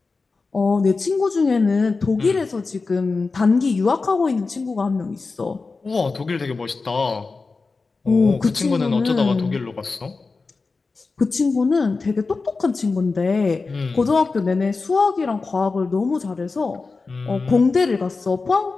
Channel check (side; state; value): right; quieter; 4.1 dB